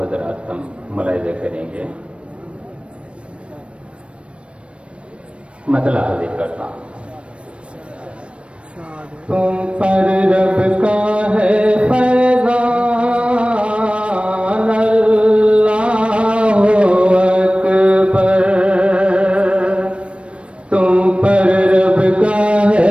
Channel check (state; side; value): late; left; 0.060 ms